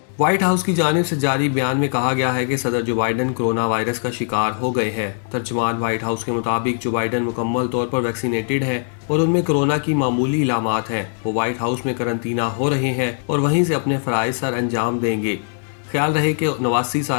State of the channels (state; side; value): silent; right; 65 dB below the other